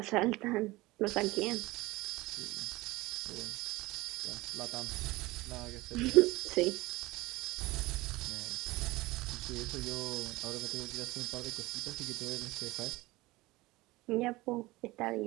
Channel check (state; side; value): quieter; left; 20.6 dB